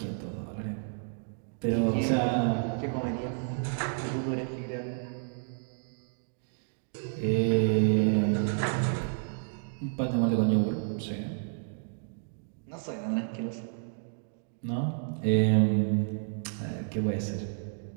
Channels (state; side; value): silent; left; digital silence